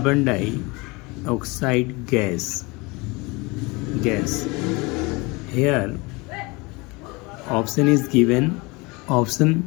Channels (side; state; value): right; quieter; 25.6 dB